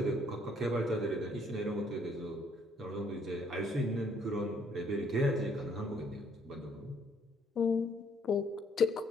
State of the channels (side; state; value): both; normal; correlation 0.66